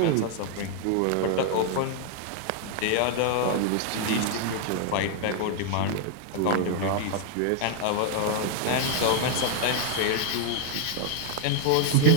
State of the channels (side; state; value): both; different; correlation 0.00